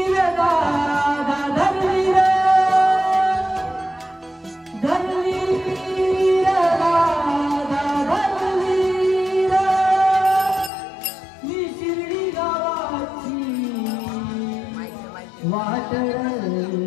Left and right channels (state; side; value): drops out; right; at 10.7 s